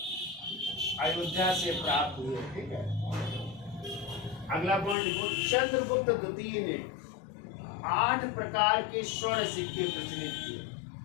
अयोध्या से प्राप्त हुए, ठीक है। अगला पॉइंट लिखो, चंद्रगुप्त द्वितीय ने 8 प्रकार के स्वर्ण सिक्के प्रचलित किए।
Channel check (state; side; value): drops out; right; at 5.0 s